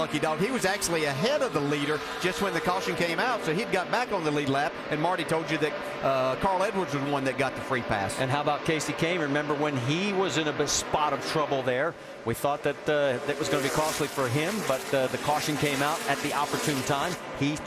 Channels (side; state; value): both; identical; correlation 1.00